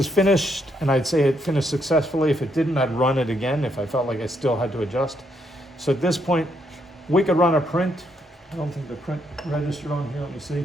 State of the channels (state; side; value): normal; both; correlation 0.75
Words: finished, and I'd say it finished successfully. If it didn't, I'd run it again if I felt like I still had to adjust. So at this point, we could run a print. I don't think the print registered on here. Let me